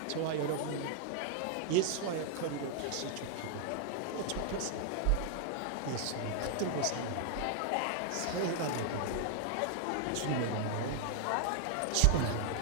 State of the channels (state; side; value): different; both; correlation 0.00